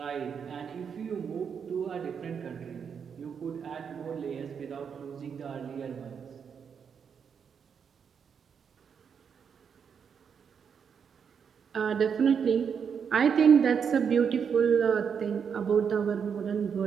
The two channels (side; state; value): left; quieter; 6.9 dB